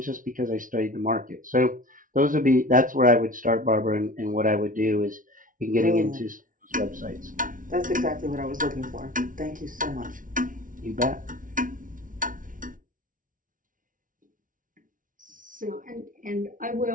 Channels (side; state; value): left; late; 0.38 ms